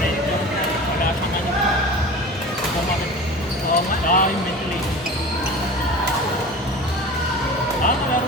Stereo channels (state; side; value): normal; both; correlation 0.36